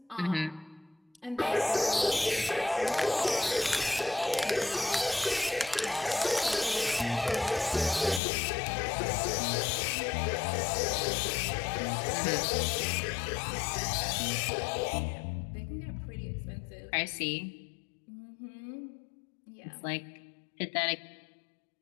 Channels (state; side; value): drops out; right; at 8.2 s